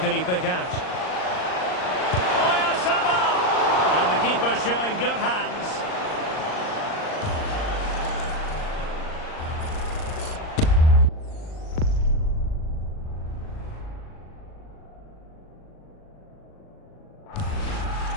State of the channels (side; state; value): right; late; 39 ms